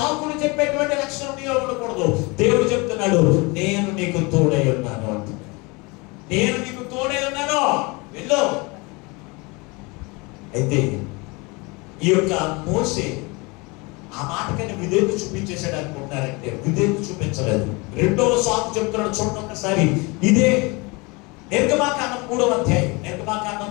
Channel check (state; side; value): quieter; right; 26.9 dB